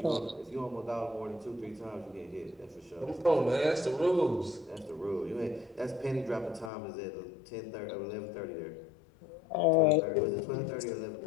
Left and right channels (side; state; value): right; drops out; at 6.7 s